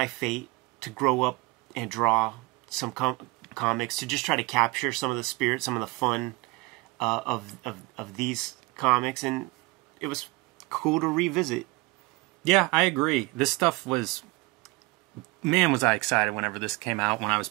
fate to grow up and draw some comics, to just try to capture some of the spirit, some of the fun of these comics, and it was cool to revisit. Yeah, I agree. This stuff was... Man, was I excited whenever this came out, when I was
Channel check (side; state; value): left; quieter; 23.9 dB